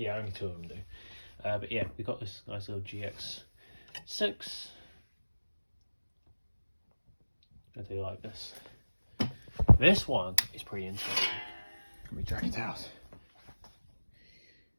only 2 of them do. But yeah, we got this nice little GX6. I do like this. This one is pretty interesting. Let me drag it out.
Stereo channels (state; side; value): inverted; both; correlation -1.00